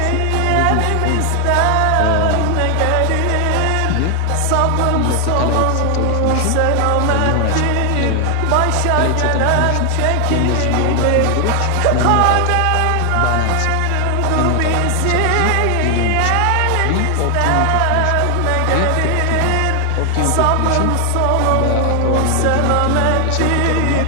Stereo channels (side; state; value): both; different; correlation 0.00